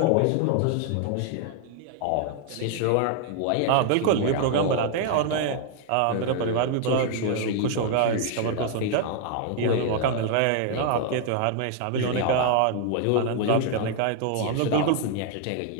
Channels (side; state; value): both; different; correlation 0.00